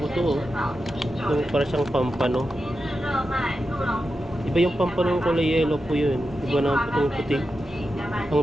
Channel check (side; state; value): both; normal; correlation 0.90